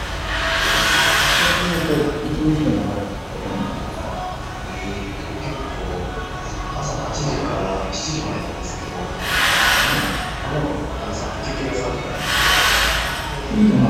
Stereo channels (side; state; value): both; identical; correlation 1.00